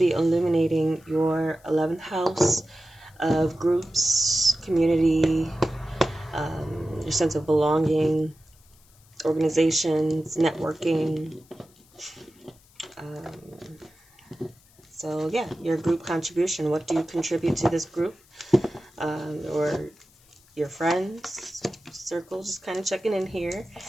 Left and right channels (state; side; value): noise; left; hiss, 29 dB below the sound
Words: illuminating your 11th house of groups, community, your sense of belonging, organizations, networking. So yeah, your group contribution. What do you contribute to this group? Or your friends circle, just kind of checking in here.